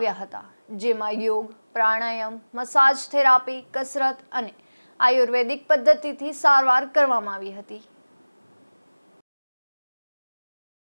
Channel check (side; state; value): both; inverted; correlation -1.00